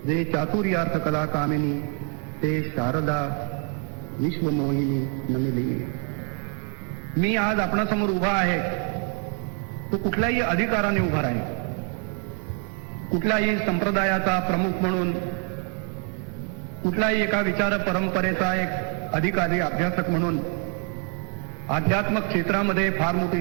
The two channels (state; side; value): quieter; left; 39.1 dB